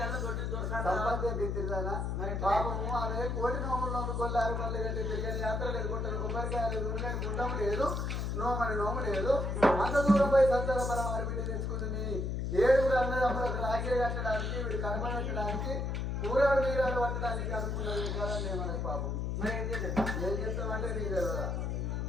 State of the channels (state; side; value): noise; left; hum, 1 dB below the sound